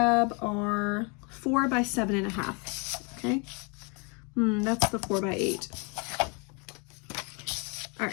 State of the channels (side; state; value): right; quieter; 32.6 dB